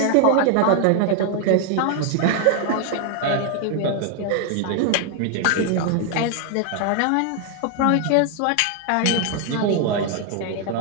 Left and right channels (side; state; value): both; different; correlation 0.00